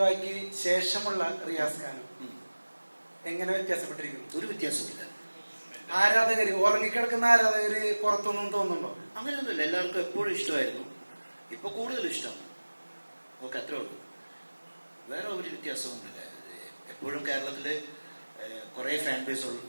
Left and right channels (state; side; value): inverted; both; correlation -1.00